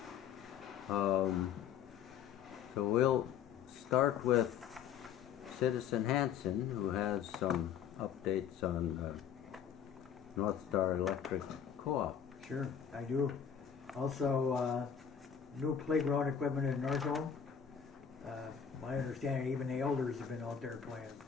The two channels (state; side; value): quieter; right; 8.1 dB